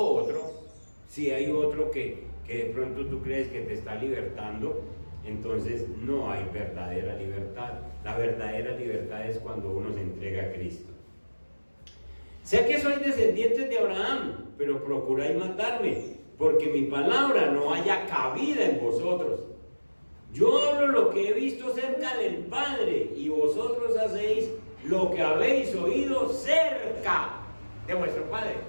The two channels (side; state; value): both; inverted; correlation -1.00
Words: si hay otro que de pronto tú crees que te está libertando, entonces no hay verdadera libertad. La verdadera libertad es cuando uno se entrega a Cristo. Sé que sois descendientes de Abraham, pero procuráis matarme, porque mi palabra no haya cabida en vosotros. Yo hablo lo que he visto cerca del Padre, y vosotros hacéis lo que habéis oído cerca de vuestro Padre.